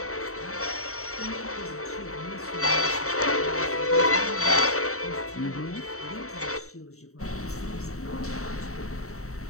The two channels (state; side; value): late; right; 0.64 ms